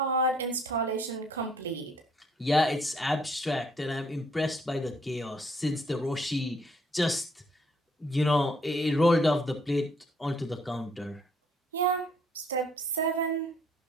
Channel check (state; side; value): normal; both; correlation 0.65